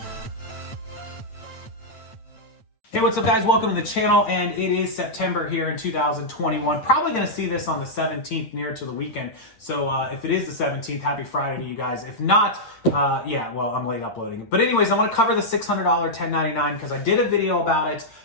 Hey, what's up guys? Welcome to the channel, and it is September here in 2021. Probably going to see this on the 17th, near to the weekend. So if it is the 17th, happy Friday to you guys. If not, yeah, well, I'm late uploading. But anyways, I want to cover the $600 1099 because I did a video about it,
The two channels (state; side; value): late; right; 8.9 ms